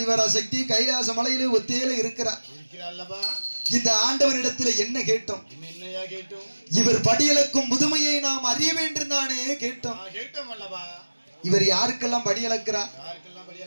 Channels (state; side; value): inverted; both; correlation -1.00